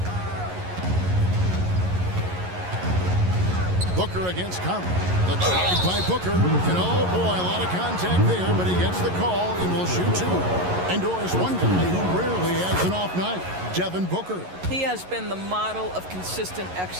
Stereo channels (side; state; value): left; late; 11 ms